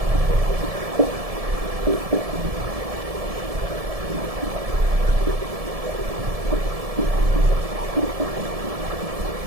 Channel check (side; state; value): left; late; 1.7 ms